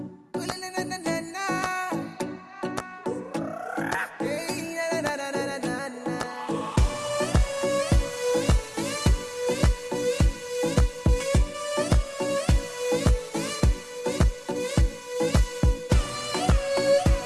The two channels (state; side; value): identical; both; correlation 1.00